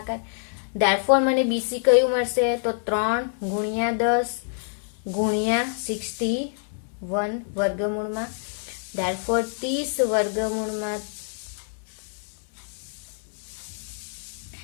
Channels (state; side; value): silent; right; 61 dB below the other